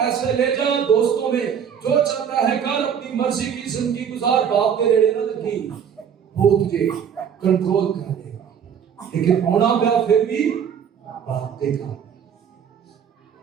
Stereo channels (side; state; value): left; quieter; 7.9 dB